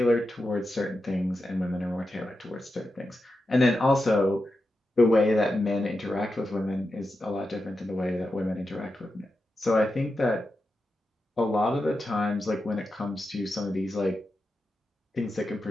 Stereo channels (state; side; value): normal; both; correlation 0.89